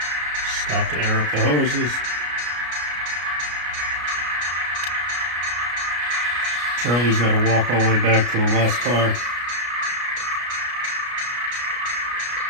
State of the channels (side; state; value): left; late; 33 ms